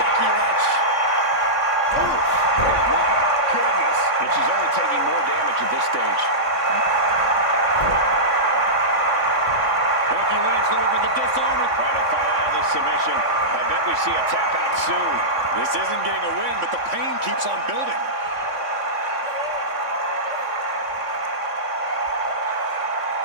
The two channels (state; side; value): late; left; 3.6 ms